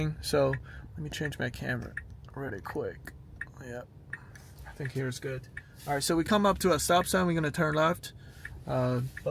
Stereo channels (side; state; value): both; identical; correlation 1.00